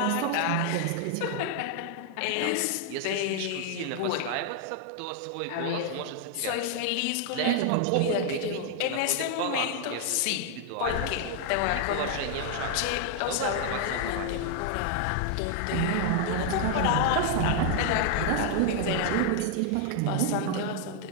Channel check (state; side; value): different; both; correlation 0.00